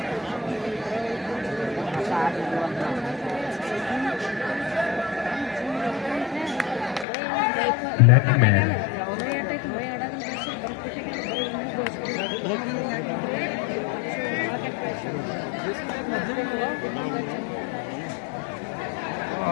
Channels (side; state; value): right; drops out; at 7.1 s